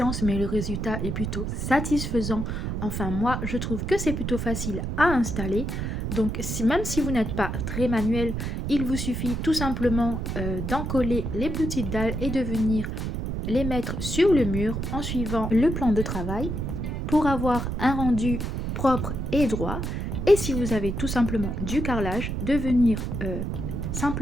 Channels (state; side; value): noise; right; rumble, 3 dB below the sound